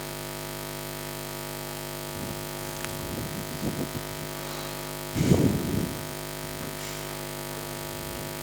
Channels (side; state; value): both; identical; correlation 1.00